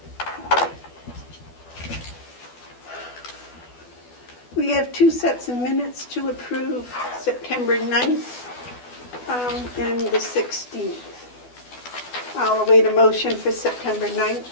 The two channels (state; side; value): late; right; 12 ms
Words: We have two sets of minutes to approve, September 9th and the 16th. I'll await a motion for September 9th.